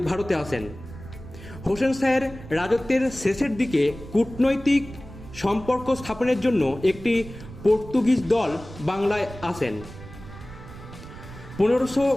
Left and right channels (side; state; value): right; noise; rumble, 15 dB below the sound